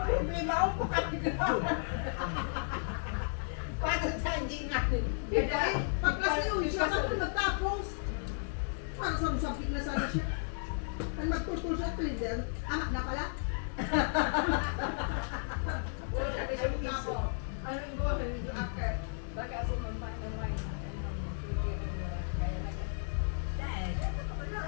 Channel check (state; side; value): silent; right; digital silence